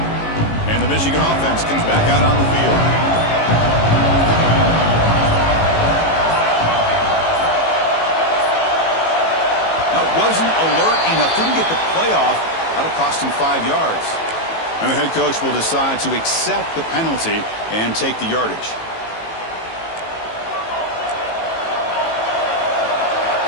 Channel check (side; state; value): right; late; 18 ms